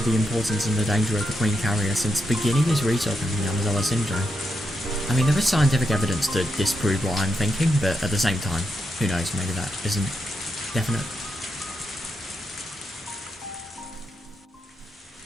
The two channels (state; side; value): normal; both; correlation 0.84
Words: the importance and the danger of the Queen Carrier since beginning his research on the Yamazawa syndrome. I mean, there is scientific evidence to disprove what I'm thinking, but at the same time, who knows, maybe that isn't definite.